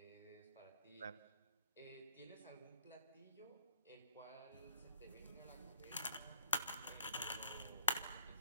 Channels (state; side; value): inverted; both; correlation -0.59